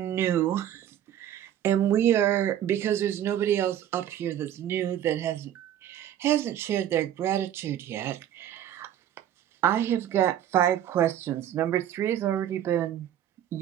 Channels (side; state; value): left; quieter; 11.0 dB